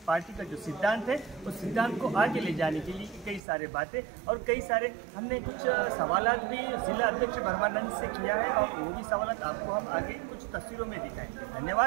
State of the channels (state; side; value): drops out; left; at 3.4 s